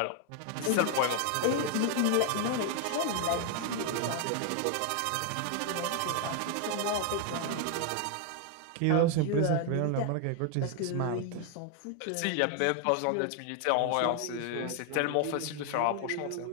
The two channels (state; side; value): different; both; correlation 0.00